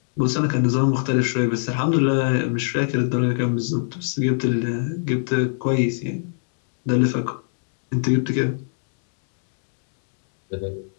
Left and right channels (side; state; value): right; silent; digital silence